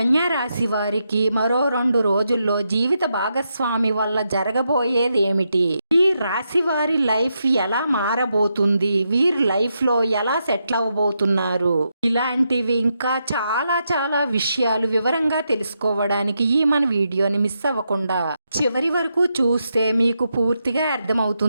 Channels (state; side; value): inverted; both; correlation -0.83